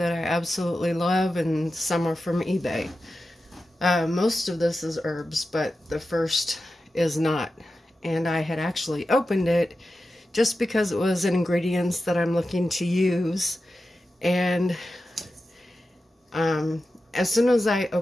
I absolutely love, and some are from eBay. Most of this is herbs, but the first is not. And I had actually opened it just because it was ingredients that I'm looking to use. And as soon as I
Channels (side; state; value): both; normal; correlation 0.92